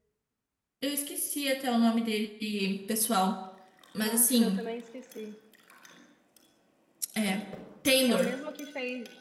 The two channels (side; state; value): both; identical; correlation 1.00